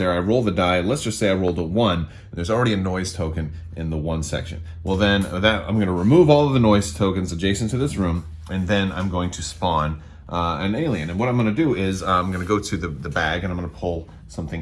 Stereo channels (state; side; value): identical; both; correlation 1.00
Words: I roll the die. Let's just say I rolled a 1. And there's already a noise token in the 1 section. Well, then I'm going to remove all of the noise tokens adjacent to this room, and then I'm going to spawn an alien. And what I'm going to do is I'm going to go to the bag and I'm going to pull something